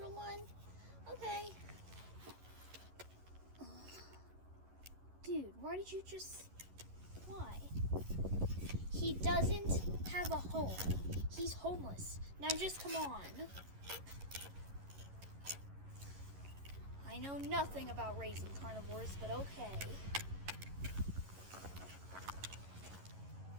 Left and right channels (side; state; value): left; late; 11 ms